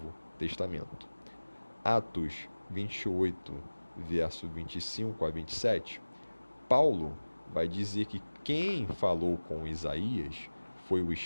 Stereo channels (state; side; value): inverted; both; correlation -1.00